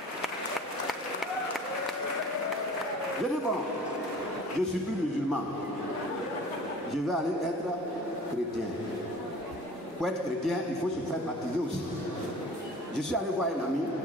Je dis bon, je ne suis plus musulman. Je vais aller être chrétien. Pour être chrétien, il faut se faire baptiser aussi. Je suis allé voir un ami.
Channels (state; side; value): normal; both; correlation 0.45